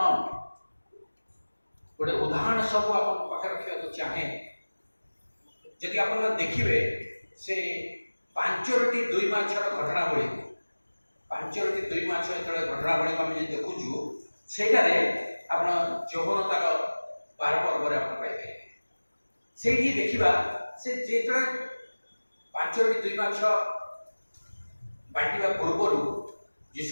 ଗୋଟେ ଉଦାହରଣ ସବୁ ଆପଣଙ୍କ ପାଖରେ ରଖିବାକୁ ଚାହେଁ। ଯଦି ଆପଣ ଦେଖିବେ ସେ 5ଟି 2 ମାଛର ଘଟଣାବଳୀ, 5ଟି 2 ମାଛ ଯେତେବେଳେ ଘଟଣାବଳୀକୁ ଆମେ ଯଦି ଦେଖୁଛୁ, ସେଇଟାରେ ଆପଣ ଯୌବନତାର 12 ପର୍ବରେ ଆପଣ ପାଇପାରିବେ। ସେଇଠି ଦେଖିବା ସେ ଯେତେବେଳେ 5ଟି 2 ମାଛ ବାଣ୍ଟିବା ପୂର୍ବରୁ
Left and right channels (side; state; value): both; inverted; correlation -1.00